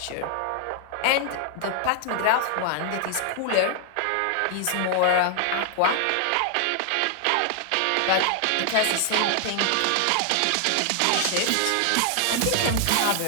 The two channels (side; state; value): both; different; correlation 0.00